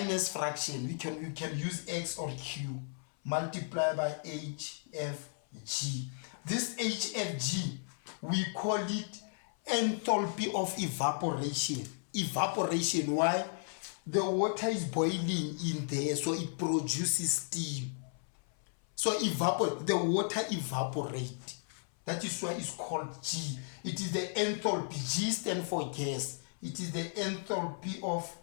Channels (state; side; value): silent; right; 55 dB below the other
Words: fraction. We can use X or Q multiplied by HFG. This HFG, we call it enthalpy of evaporation. Evaporation, why? The water is boiling in there, so it produces steam. So the water evaporates. That is why it's called G. It is the enthalpy. G stands for gas. It is the enthalpy of